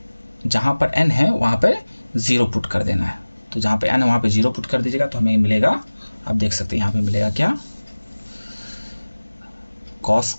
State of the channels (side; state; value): both; inverted; correlation -1.00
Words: जहाँ पर n है वहाँ पर 0 पुट कर देना है, तो जहाँ पे n है वहाँ पे 0 पुट कर दीजिएगा, तो हमें मिलेगा, आप देख सकते हैं यहाँ पे मिलेगा क्या, cos